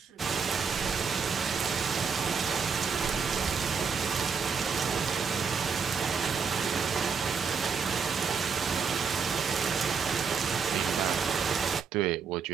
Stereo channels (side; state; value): left; quieter; 5.8 dB